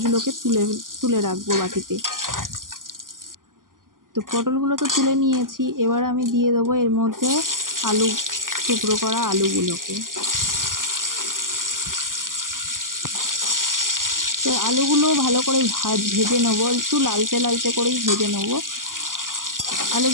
তুলে তুলে রাখবো বাটিতে। তো পটলগুলো তো তুলে নিয়েছি, এবার আমি দিয়ে দেবো এর মধ্যে আলু, টুকরো করা আলুগুলোকে। তো আলুগুলো ভালো করে ভেজে নেবো, একটু লালচে লালচে করেই ভেজে নেবো।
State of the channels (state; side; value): late; left; 0.90 ms